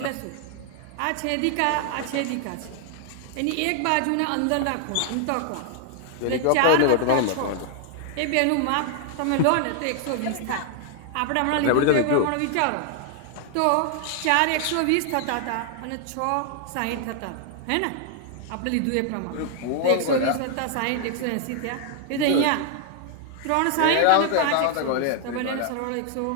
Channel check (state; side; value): different; both; correlation 0.00